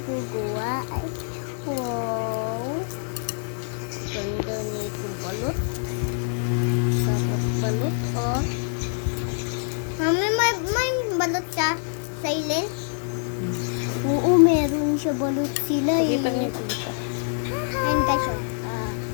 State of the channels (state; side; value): silent; right; digital silence